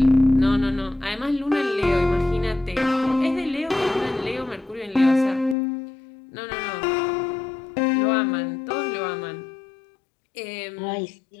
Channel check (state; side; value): drops out; right; at 5.6 s